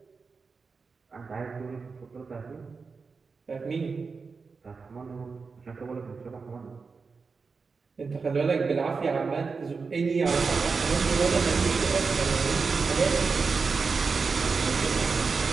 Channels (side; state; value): left; quieter; 4.8 dB